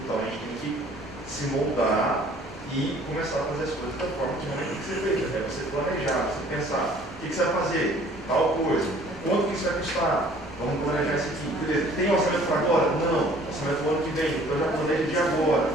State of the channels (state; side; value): normal; both; correlation 0.54